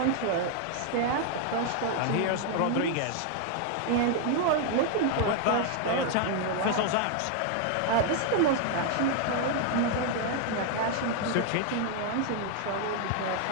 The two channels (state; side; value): different; both; correlation 0.00